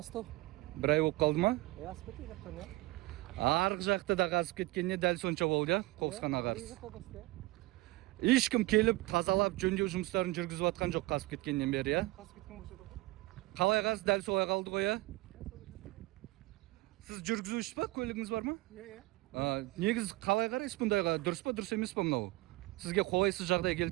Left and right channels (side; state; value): left; quieter; 21.0 dB